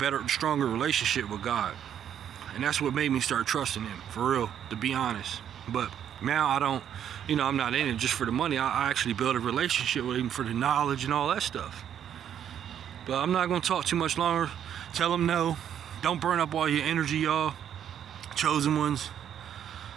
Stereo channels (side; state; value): left; quieter; 9.5 dB